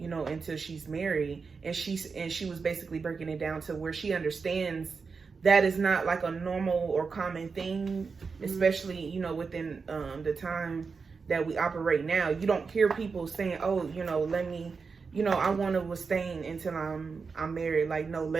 know, until she's married. And she was basically breaking it down to where she understands that is not like a normal or common thing, especially, you know, within the time that we operate now. You don't hear people saying, oh, you know, I want to abstain until I'm married. Like, no,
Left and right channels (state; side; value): quieter; left; 5.0 dB